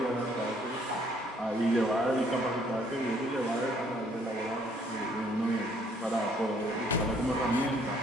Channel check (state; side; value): normal; both; correlation 0.64